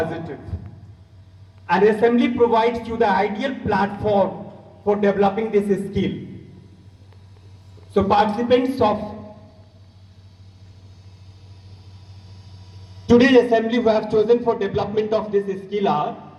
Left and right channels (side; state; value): both; identical; correlation 1.00